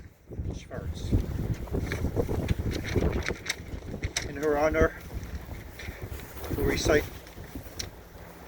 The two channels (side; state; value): both; identical; correlation 1.00